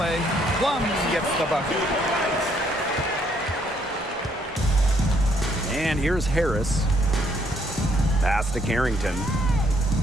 Plum gets the bucket. And here's Harris. Pass to Carrington.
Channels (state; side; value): normal; both; correlation 0.68